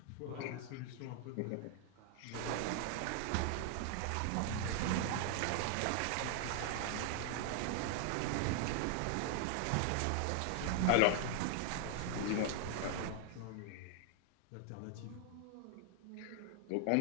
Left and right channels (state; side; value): different; both; correlation 0.00